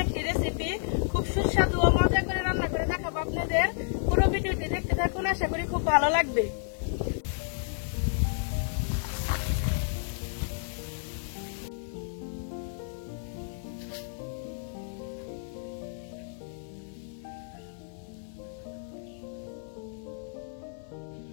একটি রেসিপি। খুব সুস্বাদু ও মজা করে রান্না করে দেখাবো আপনাদের। পুরো ভিডিওটি দেখতে থাকুন, আশা করি খুব ভালো লাগবে।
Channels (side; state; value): right; silent; 55 dB below the other